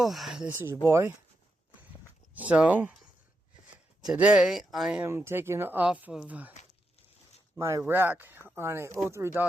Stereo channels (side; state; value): both; normal; correlation 0.85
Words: this is your boy. So, today I am taking off of my rack on a 03